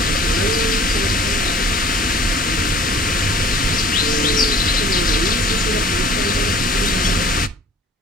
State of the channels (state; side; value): normal; both; correlation 0.48